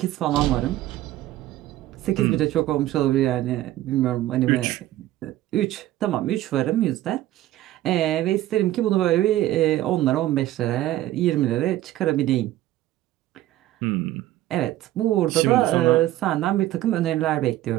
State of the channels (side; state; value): left; quieter; 14.6 dB